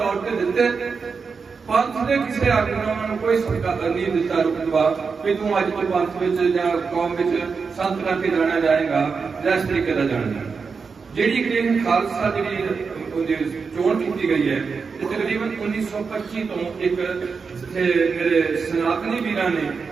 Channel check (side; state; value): left; quieter; 5.2 dB